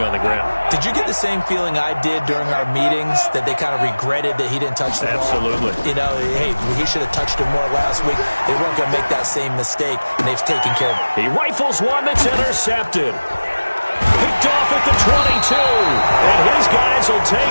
on the ground. Did you get the same feeling I did during our meetings, that they kind of regretted that he didn't touch the ball? Absolutely. You know, hey, he should have touched it more last week. They weren't going to make that same mistake, and they've taken care of it. He rifles one that's intercepted. Picked off at the 22, and his guys will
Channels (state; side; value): inverted; both; correlation -1.00